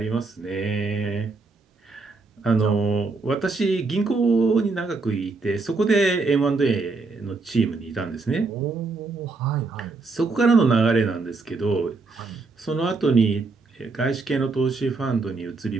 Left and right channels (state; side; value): quieter; left; 3.9 dB